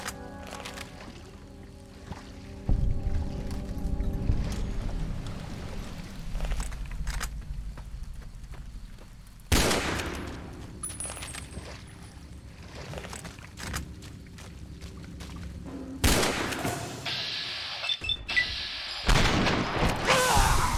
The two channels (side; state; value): both; identical; correlation 1.00